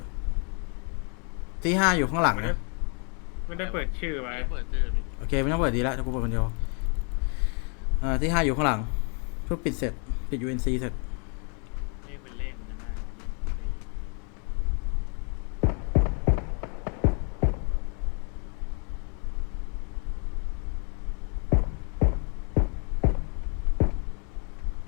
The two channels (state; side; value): quieter; right; 38.8 dB